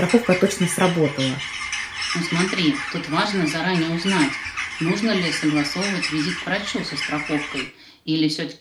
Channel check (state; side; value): identical; both; correlation 1.00